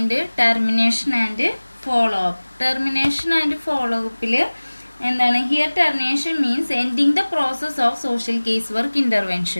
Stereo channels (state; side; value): inverted; both; correlation -1.00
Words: termination and follow up. Termination and follow അപ്പിൽ എന്താണ്? Here termination means ending the process of social case work